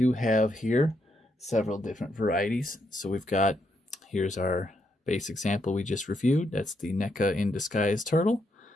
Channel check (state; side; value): normal; both; correlation 0.78